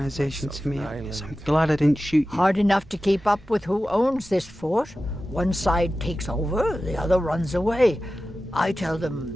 to me. I'm glad I didn't shoot you. Hard enough to keep up with who owns this fort. One side takes over, the other runs away. I tell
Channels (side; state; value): both; normal; correlation 0.94